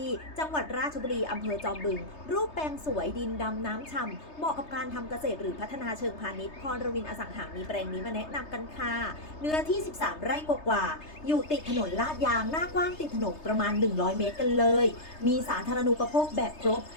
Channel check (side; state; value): right; late; 3.3 ms